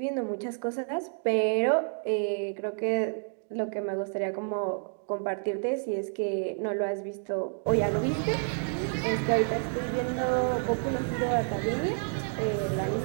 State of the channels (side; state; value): left; silent; 58 dB below the other